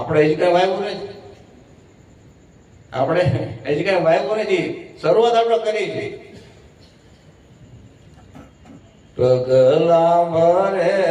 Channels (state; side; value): identical; both; correlation 1.00